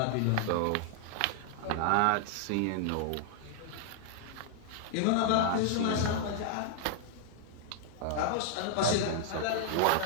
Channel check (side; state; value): both; different; correlation -0.01